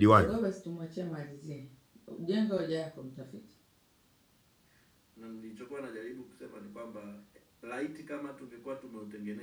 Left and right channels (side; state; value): both; identical; correlation 1.00